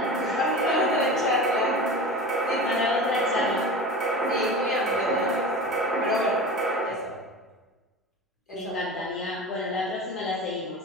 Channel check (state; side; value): normal; both; correlation 0.32